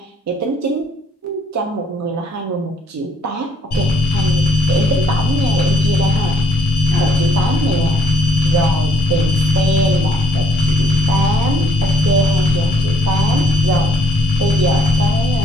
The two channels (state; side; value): normal; both; correlation 0.66